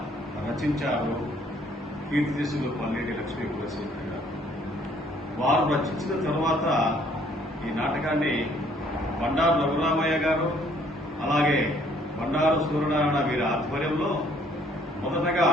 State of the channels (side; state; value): both; normal; correlation 0.62